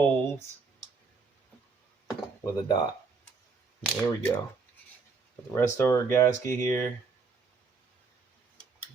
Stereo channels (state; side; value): quieter; left; 4.6 dB